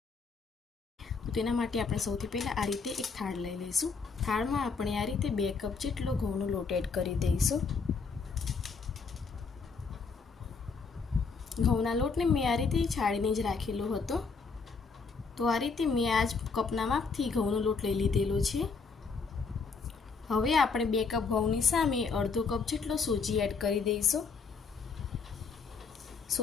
તો તેના માટે આપણે સૌથી પહેલાં આ રીતે એક થાળ લઈ લઈશું. થાળમાં આપણે આ રીતે 2 કપ જેટલો ઘઉંનો લોટ એડ કરી દઈશું. ઘઉંના લોટને મેં આ રીતે છાણીને જ રાખેલો હતો. તો આ રીતે મેં આ જ કપના માપથી ઘઉંનો લોટ લઈ લીધેલો છે. હવે આપણે 2 કપ ઘઉંની સામે અડધો કપ જેટલો સોજી એડ કરી દઈશું.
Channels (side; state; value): right; quieter; 4.9 dB